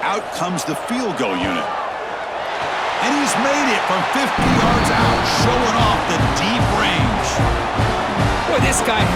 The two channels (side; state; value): both; identical; correlation 1.00